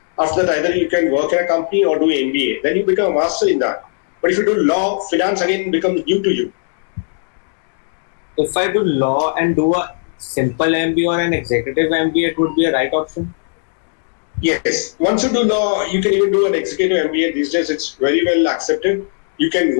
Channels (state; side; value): silent; right; digital silence